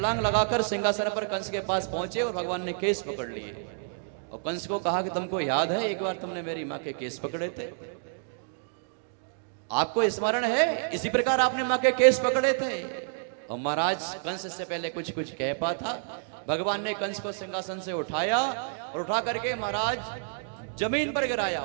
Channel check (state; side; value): silent; left; digital silence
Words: लगाकर सिंहासन पर कंस के पास पहुंचे और भगवान ने केस पकड़ लिए और कंस को कहा कि तुमको याद है एक बार तुमने मेरी माँ के केस पकड़े थे, आपको स्मरण है? इसी प्रकार आपने माँ के केस पकड़े थे। और महाराज कंस से पहले कुछ कुछ कह पा था। भगवान ने कंस को सिंहासन से उठाया और उठा करके महाराज जमीन पर गिराया।